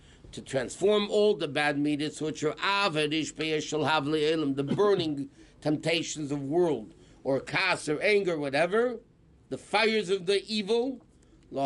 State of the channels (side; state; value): both; identical; correlation 1.00